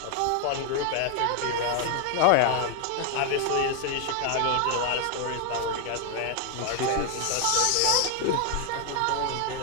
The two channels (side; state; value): both; different; correlation 0.00